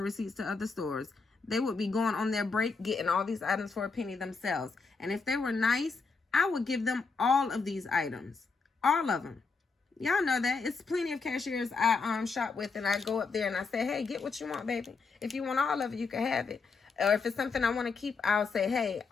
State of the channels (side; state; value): right; quieter; 4.6 dB